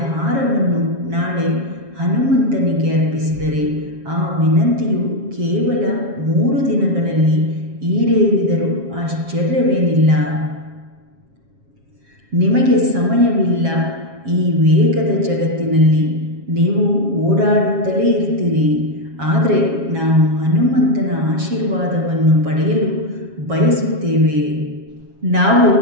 ಹಾರವನ್ನು ನಾಳೆ ಹನುಮಂತನಿಗೆ ಅರ್ಪಿಸಿದರೆ ಆ ವಿನಂತಿಯು ಕೇವಲ 3 ದಿನಗಳಲ್ಲಿ ಈಡೇರಿದರೂ ಆಶ್ಚರ್ಯವೇನಿಲ್ಲ. ನಿಮಗೆ ಸಮಯವಿಲ್ಲ. ಈ ವೇಗದ ಜಗತ್ತಿನಲ್ಲಿ ನೀವು ಓಡಾಡುತ್ತಲೇ ಇರ್ತೀರಿ. ಆದರೆ ನಾವು ಹನುಮಂತನ ಆಶೀರ್ವಾದವನ್ನು ಪಡೆಯಲು ಬಯಸುತ್ತೇವೆ. ನಾವು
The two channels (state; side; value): late; left; 7.4 ms